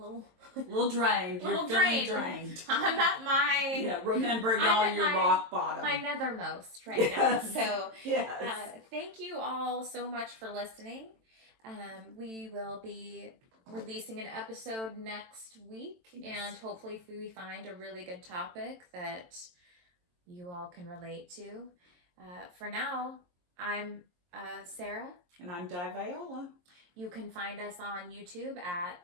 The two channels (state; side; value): late; left; 22 ms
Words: A little drained. Little You're feeling drained. drained. I'm at my Yeah, remembering I'm all at your my- rock bottom. my nethermost right now. Yes. So Yes. thank you all so much for listening. We will be releasing an episode next week, Yes. and hopefully if we find a really good topic that you all can relate to. For now, I'm Sarah. And I'm Di Viola. You can find us on YouTube